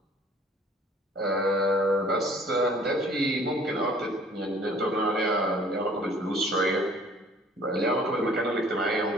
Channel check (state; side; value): normal; both; correlation 0.54